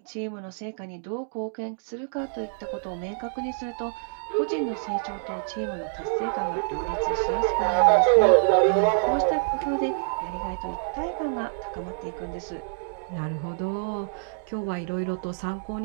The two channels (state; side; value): silent; left; digital silence